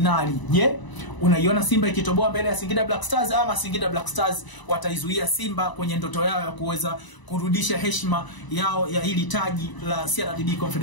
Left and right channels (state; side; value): late; right; 1.0 ms